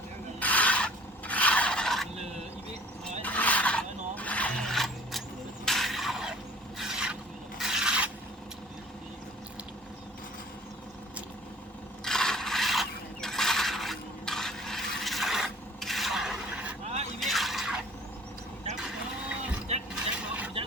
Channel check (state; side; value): normal; both; correlation 0.50